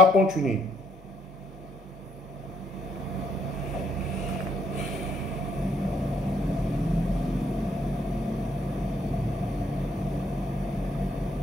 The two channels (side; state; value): both; normal; correlation 0.70